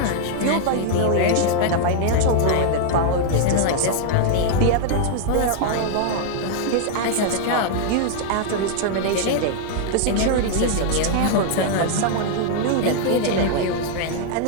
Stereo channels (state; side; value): different; both; correlation 0.00